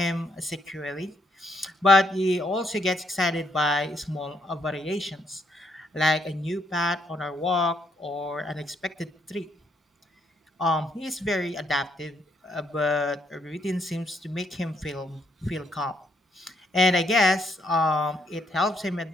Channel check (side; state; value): both; normal; correlation 0.73